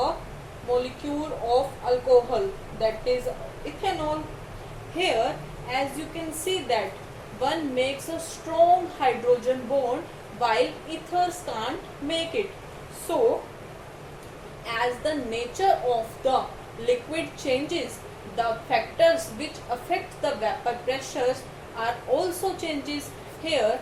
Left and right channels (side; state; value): both; identical; correlation 1.00